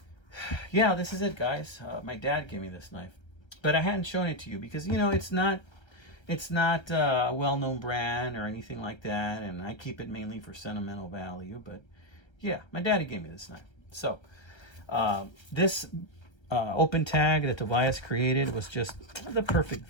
Yeah, this is it, guys. My dad gave me this knife, but I hadn't shown it to you because, you know, it's not a well-known brand or anything like that, and I keep it mainly for sentimental value. But yeah, my daddy gave me this knife. So this open tag that Tobias created was just the perfect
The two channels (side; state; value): right; late; 1.3 ms